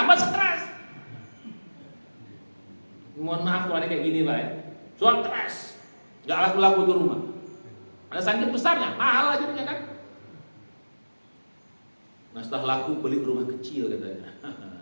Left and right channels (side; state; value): both; inverted; correlation -1.00